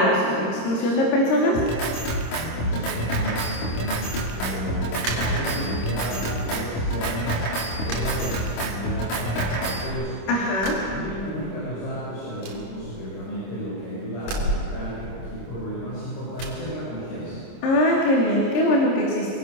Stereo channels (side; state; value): right; late; 26 ms